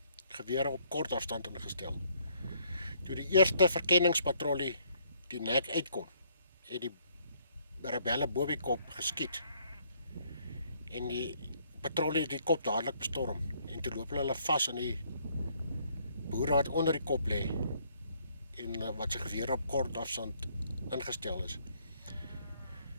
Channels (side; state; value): both; inverted; correlation -0.66